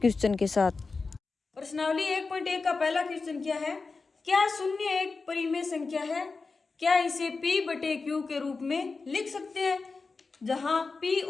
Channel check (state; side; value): quieter; right; 4.2 dB